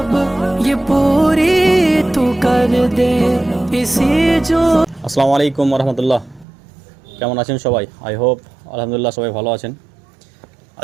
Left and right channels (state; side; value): drops out; left; at 6.5 s